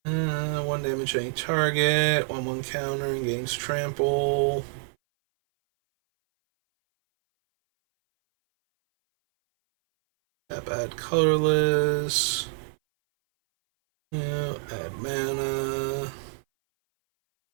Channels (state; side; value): silent; left; 59 dB below the other